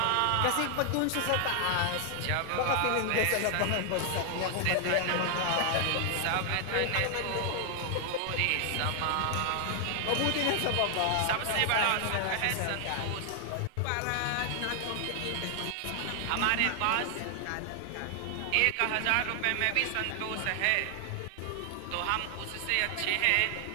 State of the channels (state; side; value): different; both; correlation 0.00